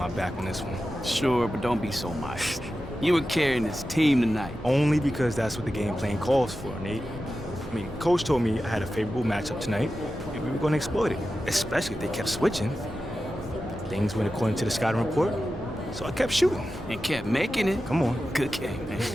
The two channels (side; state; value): both; normal; correlation 0.92